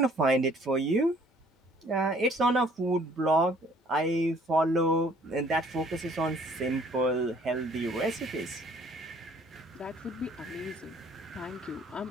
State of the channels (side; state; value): both; normal; correlation 0.58